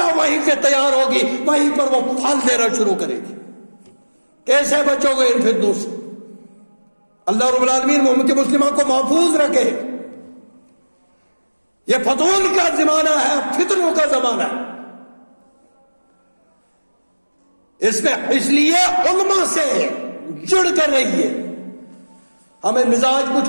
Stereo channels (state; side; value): inverted; both; correlation -1.00